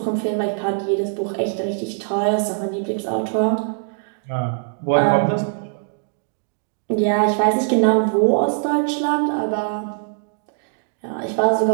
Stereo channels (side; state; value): left; silent; digital silence